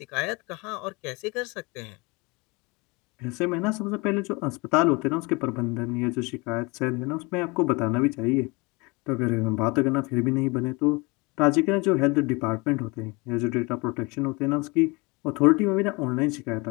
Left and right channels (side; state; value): right; quieter; 26.6 dB